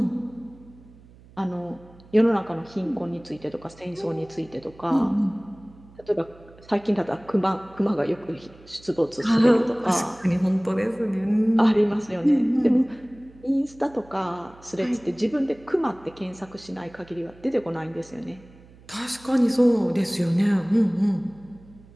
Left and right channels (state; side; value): noise; right; hum, 24 dB below the sound